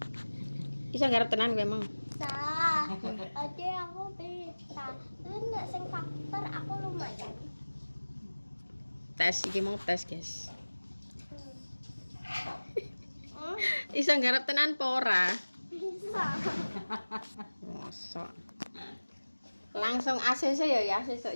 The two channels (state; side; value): inverted; both; correlation -1.00